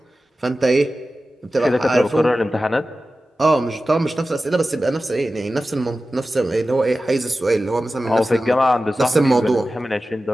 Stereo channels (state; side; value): normal; both; correlation 0.94